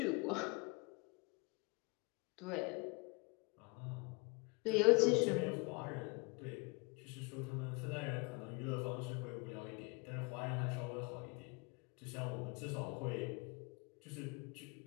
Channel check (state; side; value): quieter; right; 29.8 dB